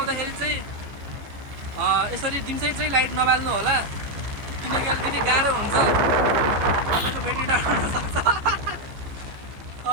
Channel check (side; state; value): left; late; 15 ms